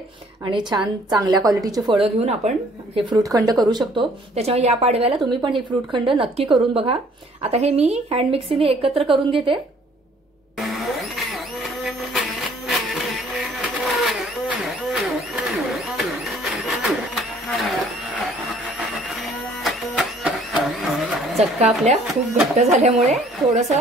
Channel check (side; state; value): both; normal; correlation 0.58